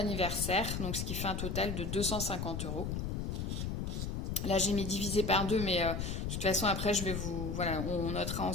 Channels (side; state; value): left; noise; rumble, 2 dB below the sound